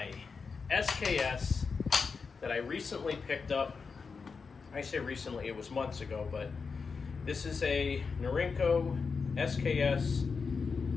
SKS that I recently picked up. I say recently, it was months ago, but this is a Norinco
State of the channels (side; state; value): right; quieter; 5.1 dB